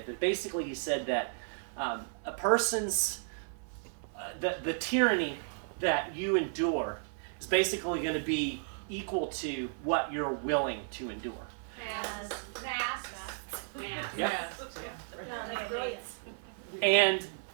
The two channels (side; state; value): left; silent; 55 dB below the other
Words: But basically, he said that a person's the tyranny that you endure is basically going to be equal to what you're willing to endure. Masks. Yep. And